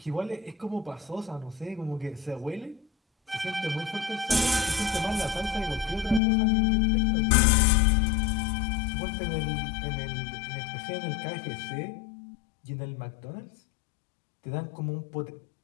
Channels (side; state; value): right; drops out; at 6.2 s